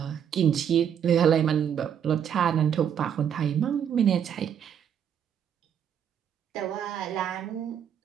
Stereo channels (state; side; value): quieter; left; 8.6 dB